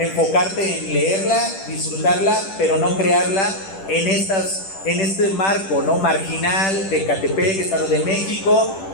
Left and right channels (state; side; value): late; right; 10 ms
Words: en leerla, disfrutarla, pero no crearla en este marco, ¿no?, marginal de Ecatepec, Estado de México,